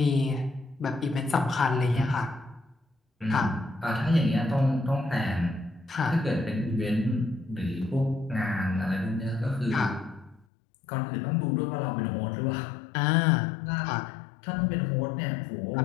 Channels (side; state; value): right; drops out; at 10.5 s